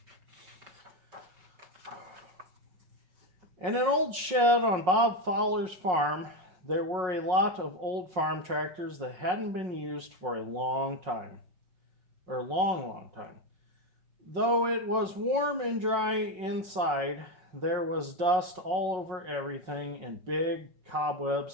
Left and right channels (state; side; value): late; left; 5.5 ms